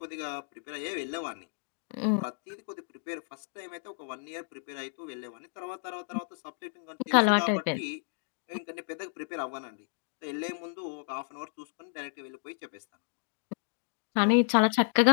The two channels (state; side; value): silent; right; digital silence